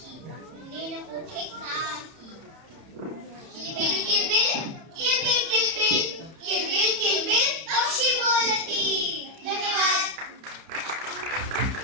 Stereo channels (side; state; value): left; late; 31 ms